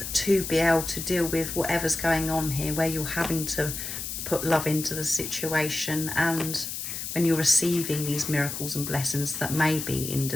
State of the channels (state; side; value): noise; left; hiss, 6 dB below the sound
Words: to be able to deal with whatever's going on here, where you're having to put love into the situation, and when you're receiving these miracles and blessings that may be in